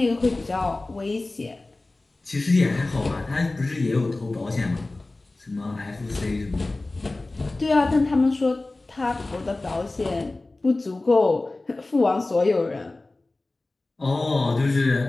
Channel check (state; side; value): quieter; right; 3.1 dB